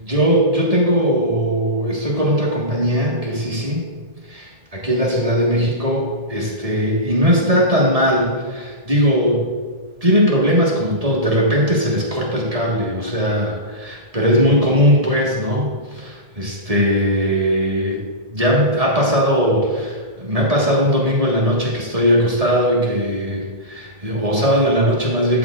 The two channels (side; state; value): left; late; 1.7 ms